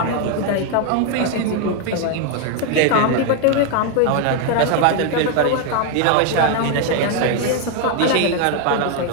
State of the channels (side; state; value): both; different; correlation 0.01